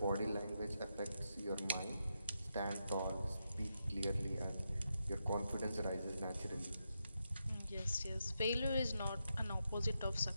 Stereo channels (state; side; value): inverted; both; correlation -0.85